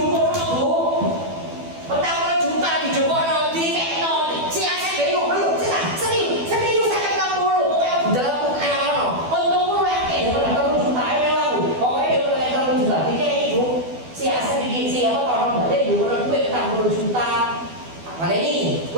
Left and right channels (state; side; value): late; left; 12 ms